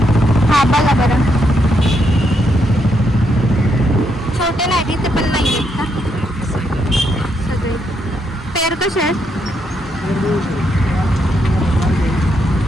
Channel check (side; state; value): both; normal; correlation 0.78